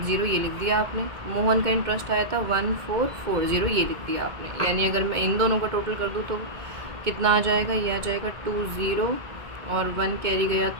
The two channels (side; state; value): left; late; 2.1 ms